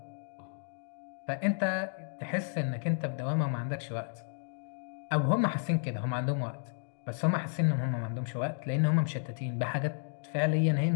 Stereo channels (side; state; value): right; silent; digital silence